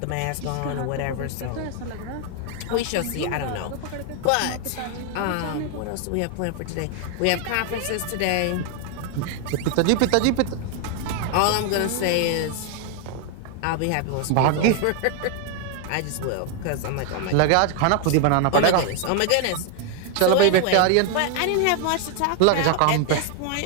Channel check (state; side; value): different; both; correlation 0.01